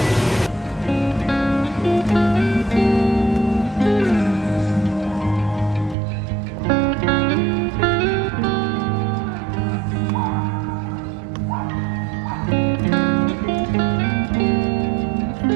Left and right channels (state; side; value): drops out; left; at 6.0 s